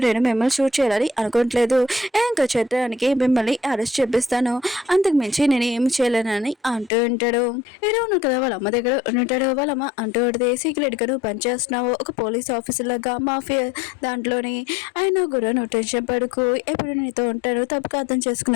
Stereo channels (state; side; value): drops out; right; at 6.9 s